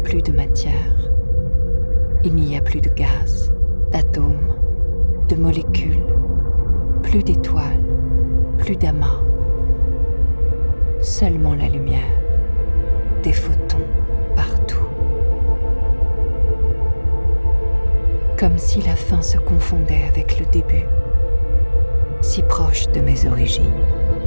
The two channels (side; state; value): both; inverted; correlation -1.00